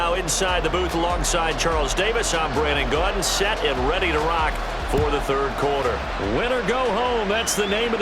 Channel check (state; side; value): identical; both; correlation 1.00